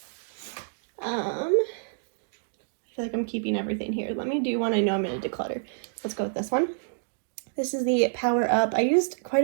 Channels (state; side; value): silent; left; digital silence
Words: I feel like I'm keeping everything here. Let me do one I know I'm gonna declutter. Let's go with this one. This is the Power Up. I used quite